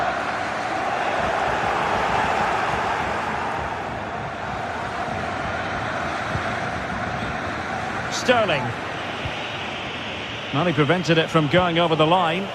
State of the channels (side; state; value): both; identical; correlation 1.00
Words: Sterling. Well, he prevented it from going over the line.